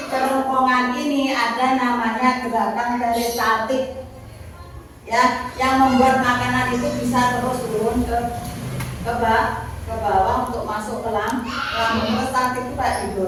kerongkongan ini ada namanya gerakan peristaltik, ya, yang membuat makanan itu bisa terus turun ke bawah untuk masuk ke lambung. Peristaltik itu kayak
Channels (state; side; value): identical; both; correlation 1.00